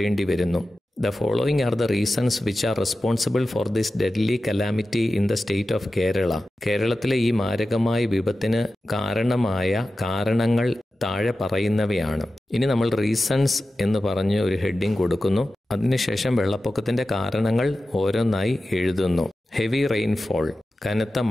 വരുന്നു. The following are the reasons which are responsible for this deadly calamity in the state of Kerala. കേരളത്തിലെ ഈ മാരകമായ വിപത്തിന് കാരണമായ കാരണങ്ങൾ താഴെ പറയുന്നവയാണ്. ഇനി നമ്മൾ റീസൺസ് എന്ന് പറഞ്ഞ് ഒരു ഹെഡിങ് കൊടുക്കുന്നു. അതിനുശേഷം വെള്ളപ്പൊക്കത്തിന്റെ കാരണങ്ങൾ ഓരോന്നായി എഴുതുന്നു. ഹെവി റെയിൻഫോൾ, കനത്ത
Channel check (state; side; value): normal; both; correlation 0.94